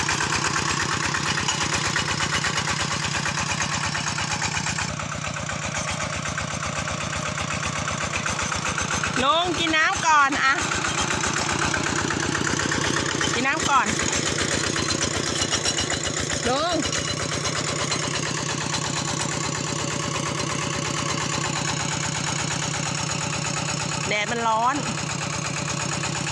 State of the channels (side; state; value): both; identical; correlation 1.00